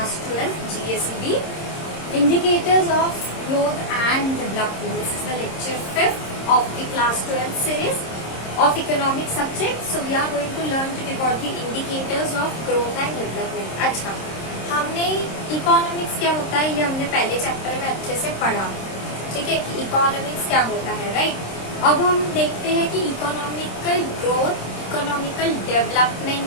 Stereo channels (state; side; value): late; right; 26 ms